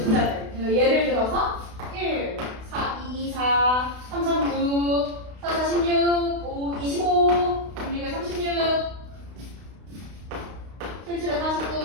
그러니까 예를 들어서 1, 4, 2, 4, 3, 3, 9, 4, 4, 16, 5, 25, 6, 36, 7, 7,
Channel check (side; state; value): left; late; 32 ms